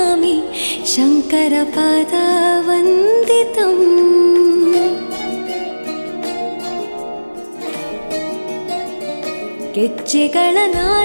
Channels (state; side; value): inverted; both; correlation -1.00